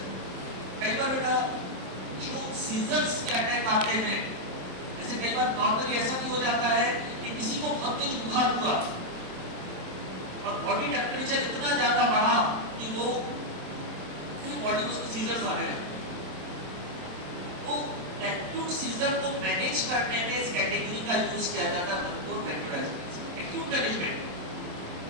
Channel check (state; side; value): late; left; 27 ms